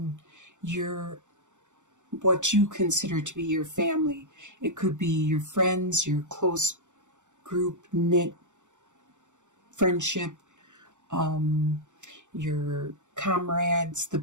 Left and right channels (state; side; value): late; left; 0.85 ms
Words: your what you consider to be your family. It could be your friends, your close group knit friendship, your comrades, the